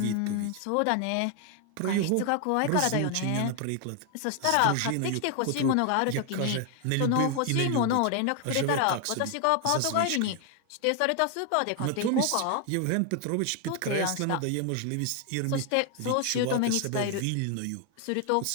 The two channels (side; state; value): both; different; correlation 0.00